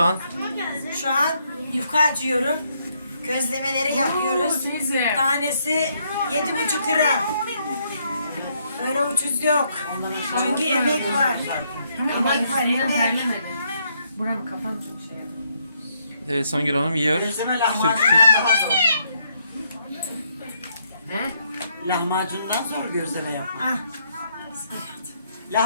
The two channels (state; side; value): inverted; both; correlation -0.73